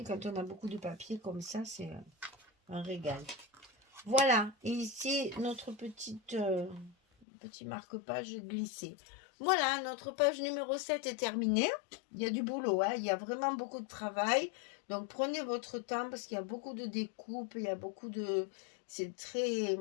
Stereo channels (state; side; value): drops out; right; at 7.2 s